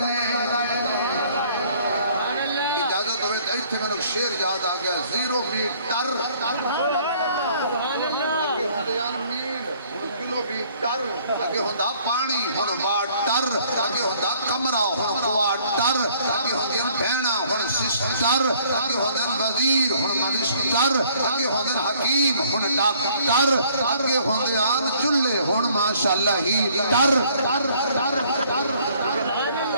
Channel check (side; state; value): both; inverted; correlation -0.60